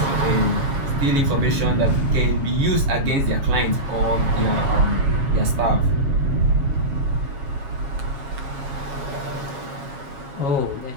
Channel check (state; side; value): late; left; 7.3 ms